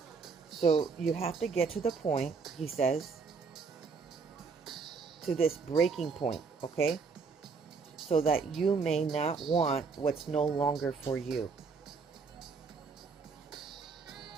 So you have to get to the point, he says, to this breaking point, okay? So that you may not want what's no longer for you.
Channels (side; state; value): left; quieter; 5.0 dB